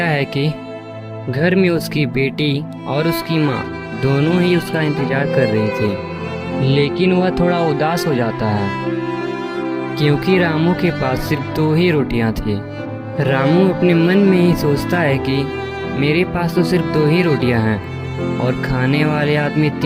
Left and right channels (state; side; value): identical; both; correlation 1.00